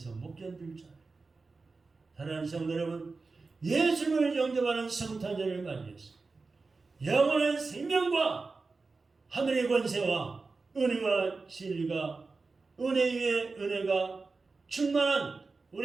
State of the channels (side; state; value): left; quieter; 4.0 dB